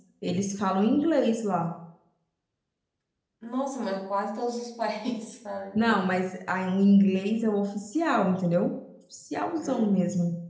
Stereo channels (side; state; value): both; identical; correlation 1.00